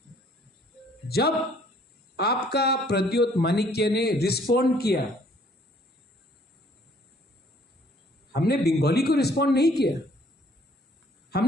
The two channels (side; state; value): both; normal; correlation 0.60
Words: जब आपका प्रद्योत माणिक्य ने रिस्पॉन्ड किया, हमने बंगाली को रिस्पॉन्ड नहीं किया,